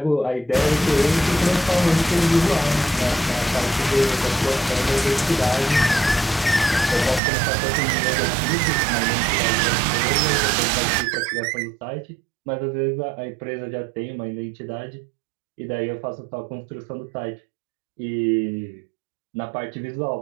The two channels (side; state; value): left; drops out; at 7.2 s